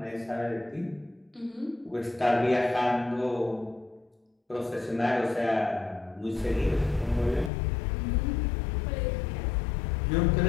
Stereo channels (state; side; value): drops out; right; at 7.5 s